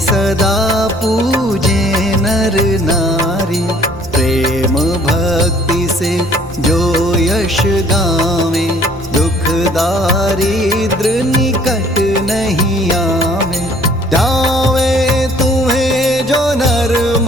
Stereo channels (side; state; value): both; normal; correlation 0.58